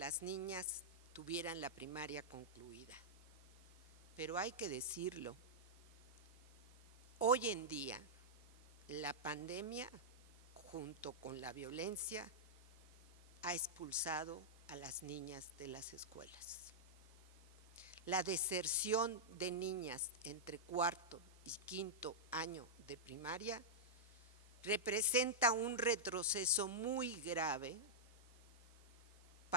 niñas tuvieran la primaria concluida, pero hay que decirlo, hoy en día la pandemia junto con la violencia ha expulsado a las niñas de las escuelas. La deserción de niñas entre cuarto y quinto año de primaria representa un retroceso muy grave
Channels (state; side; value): normal; both; correlation -0.09